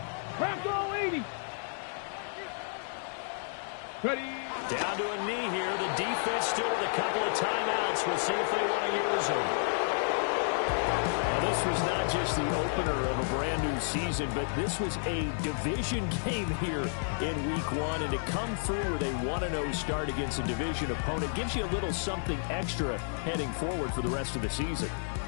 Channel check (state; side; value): silent; right; digital silence